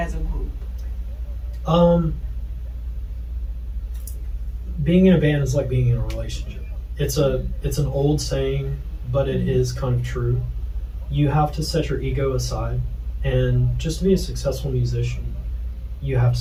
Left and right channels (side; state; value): both; identical; correlation 1.00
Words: a group? Being in a band is like being in a relationship. It's an old saying, but it is kind of true. You have to set your ego aside, and just to be a successful musician, you have to